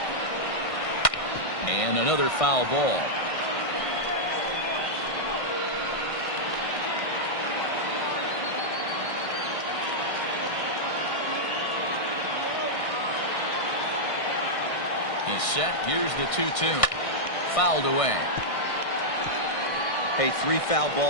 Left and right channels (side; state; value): right; late; 1.6 ms